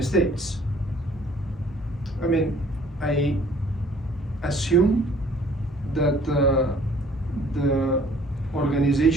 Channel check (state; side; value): normal; both; correlation 0.56